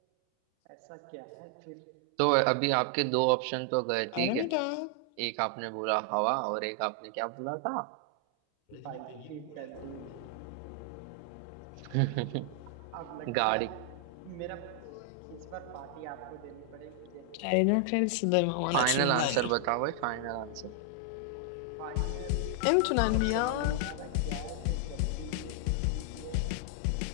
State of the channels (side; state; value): both; different; correlation 0.00